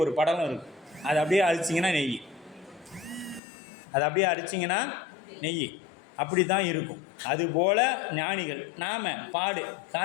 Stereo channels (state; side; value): drops out; right; at 3.4 s